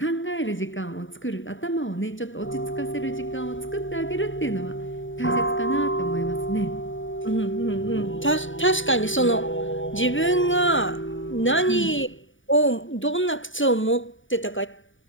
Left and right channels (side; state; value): right; late; 0.56 ms